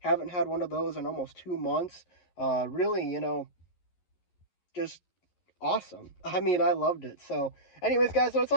had one of those in almost 2 months. Really, you know, just awesome. I mean, I loved it. So, anyways, guys, that's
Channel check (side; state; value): right; late; 11 ms